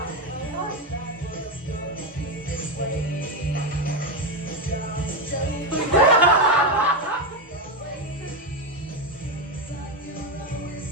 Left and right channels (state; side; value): normal; both; correlation 0.10